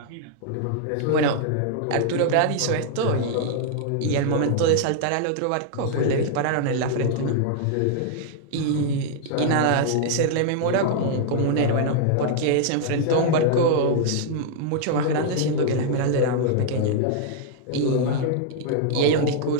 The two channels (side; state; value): both; different; correlation -0.01